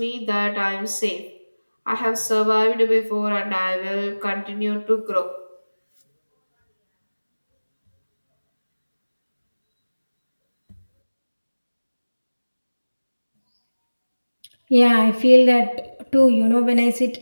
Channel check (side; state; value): both; inverted; correlation -1.00